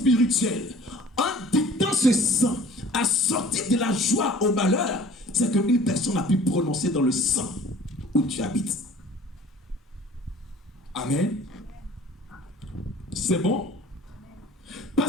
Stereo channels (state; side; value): normal; both; correlation 0.49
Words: en dictant ce sang, à sortir de la joie au malheur, c'est qu'une personne a pu prononcer dans le sang où tu habites. Amen. C'est bon?